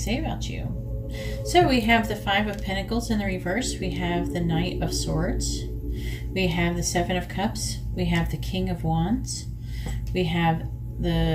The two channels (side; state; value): both; identical; correlation 1.00